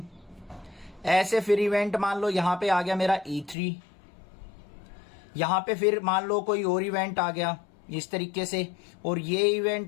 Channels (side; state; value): right; drops out; at 3.6 s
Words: ऐसे फिर इवेंट मान लो यहां पे आ गया मेरा E3, यहां पे फिर मान लो कोई और इवेंट आ गया इस तरीके से, और ये